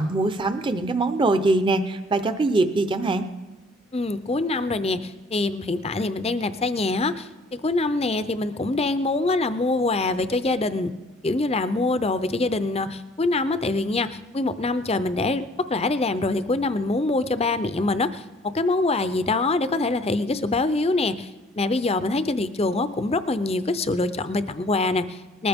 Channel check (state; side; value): normal; both; correlation 0.56